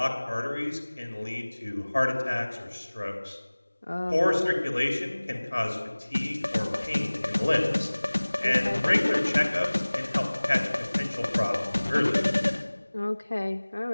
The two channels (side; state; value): both; inverted; correlation -1.00